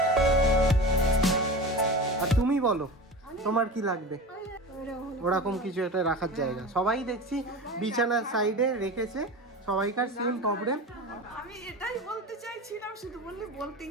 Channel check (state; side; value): normal; both; correlation 0.30